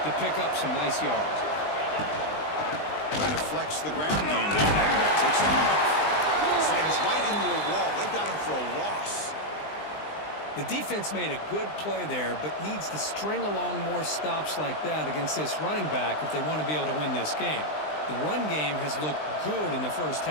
to pick up some nice yards. Trying to flex the ground game there. That takes him off. Slams right into a wall. They got him for a loss. The defense made a good play there, but needs to string along more stops like that against this running back if they want to be able to win this game. The run game has looked good in the first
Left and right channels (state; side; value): late; right; 20 ms